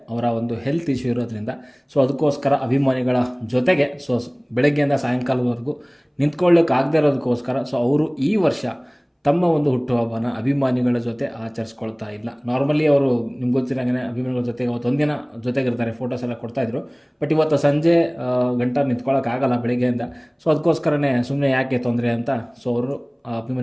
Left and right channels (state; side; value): identical; both; correlation 1.00